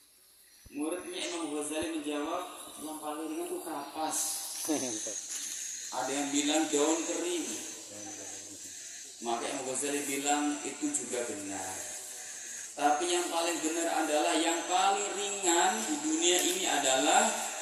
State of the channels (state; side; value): identical; both; correlation 1.00